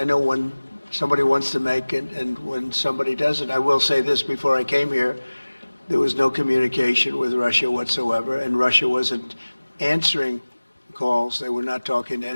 know when somebody wants to make and when somebody doesn't. I will say this, before I came here, there was no communication with Russia whatsoever, and Russia wasn't answering calls. They were not talking to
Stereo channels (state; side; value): inverted; both; correlation -1.00